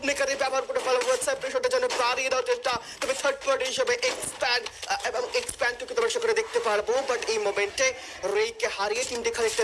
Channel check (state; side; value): identical; both; correlation 1.00